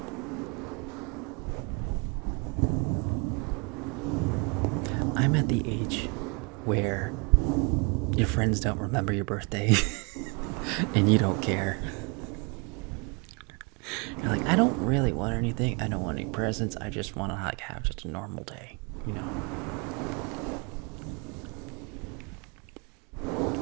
I'm at the age where your friends don't remember your birthday and you don't care. You're like, I don't really want anything. I don't want any presents. I just want to like have just a normal day, you know.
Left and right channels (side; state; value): left; quieter; 32.3 dB